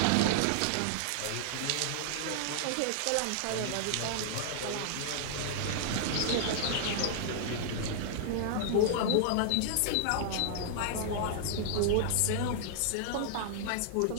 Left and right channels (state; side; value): different; both; correlation -0.01